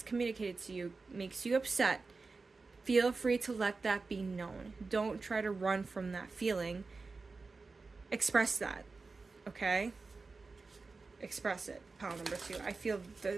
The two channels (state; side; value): quieter; left; 4.0 dB